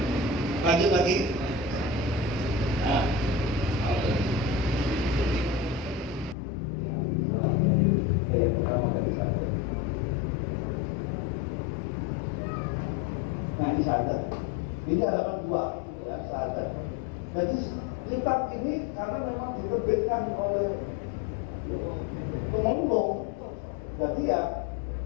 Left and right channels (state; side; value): drops out; right; at 6.4 s